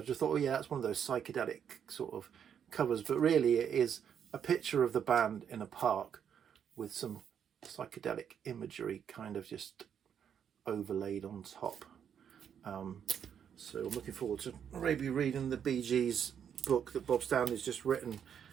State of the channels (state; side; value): quieter; left; 8.3 dB